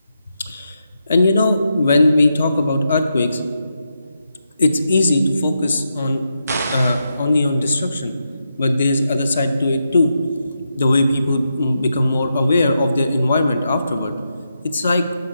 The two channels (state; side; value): inverted; both; correlation -0.85